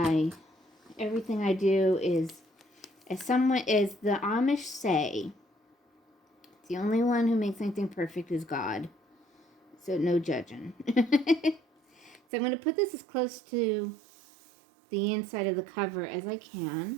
Everything I do is, as the Amish say, the only one who makes anything perfect is God. So no judging. So I'm going to put this as close to the inside of the cover as I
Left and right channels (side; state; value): left; drops out; at 12.2 s